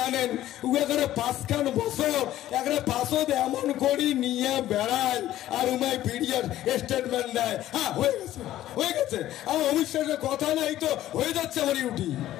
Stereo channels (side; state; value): right; quieter; 13.6 dB